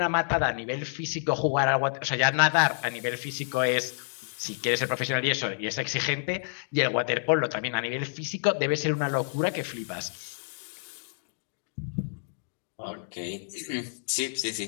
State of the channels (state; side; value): silent; right; digital silence